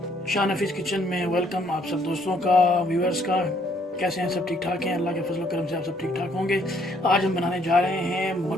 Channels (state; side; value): normal; both; correlation 0.67